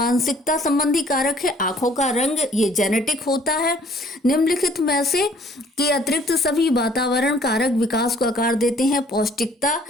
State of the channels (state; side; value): normal; both; correlation 0.58